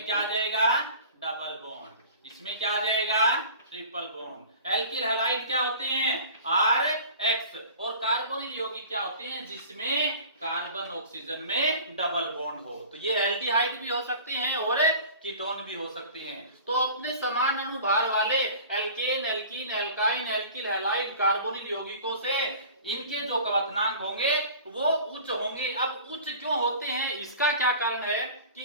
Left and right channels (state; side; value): inverted; both; correlation -0.42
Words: क्या आ जाएगा, डबल बॉन्ड। इसमें क्या आ जाएगा, ट्रिपल बॉन्ड। एल्किल हैलाइड क्या होते हैं, RH, और कार्बोनिल यौगिक क्या होते हैं, जिसमें कार्बन ऑक्सीजन में डबल बॉन्ड हो। तो ये एल्डिहाइड भी हो सकते हैं और कीटोन भी हो सकते हैं। तो अपने समान अणुभार वाले alkane, alkene, alkyne, alkyl halide, carbonyl यौगिकों से इनके जो कवथनांक होंगे वो उच्च होंगे। अब उच्च क्यों होते हैं, इसका क्या कारण है कि